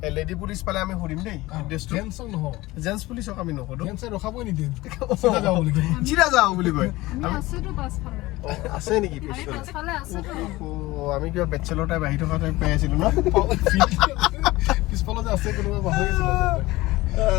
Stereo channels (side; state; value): right; quieter; 19.3 dB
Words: লেডি পুলিচ পালে আমি সুধিম দেই জেন্টছ পুলিচক আমি নুসুধো ৰখাবই নিদিয়ে চিধা যাওঁ বুলি কয় আছে নেকি আমি কিবা বেচেলৰ টাইপ আহি থকা টাইপ পাই আছিলোঁ ন পিছফালে যে আছে কোনোবা পাহৰি গৈছিল